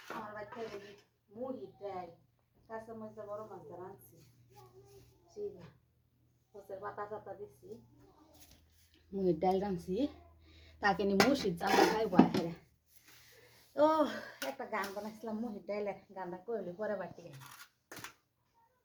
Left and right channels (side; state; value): both; identical; correlation 1.00